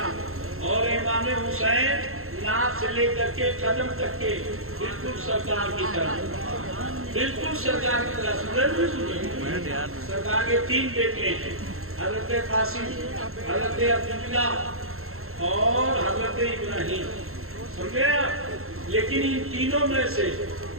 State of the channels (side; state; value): left; late; 0.62 ms